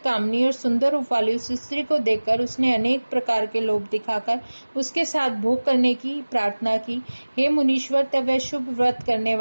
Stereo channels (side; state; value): both; inverted; correlation -1.00